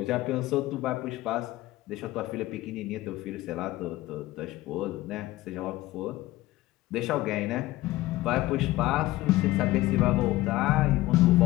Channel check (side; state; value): right; quieter; 17.5 dB